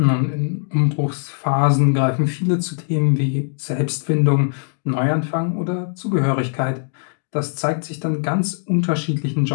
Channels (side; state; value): right; silent; digital silence